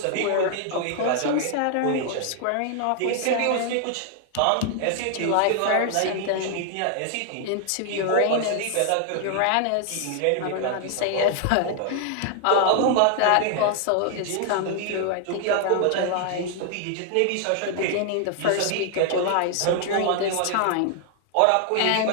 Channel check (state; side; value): different; both; correlation 0.00